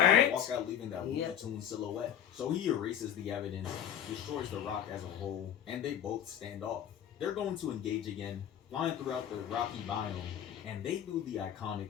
Walk out leaving that Looney Tunes silhouette. So he erases the evidence, destroys the rock as a whole, and they both stand off. They're going to engage again, flying throughout the rocky biome, and they do the iconic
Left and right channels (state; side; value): quieter; right; 9.8 dB